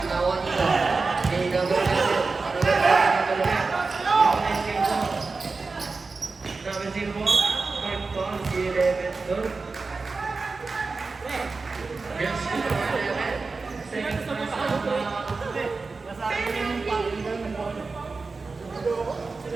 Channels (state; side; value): quieter; left; 4.1 dB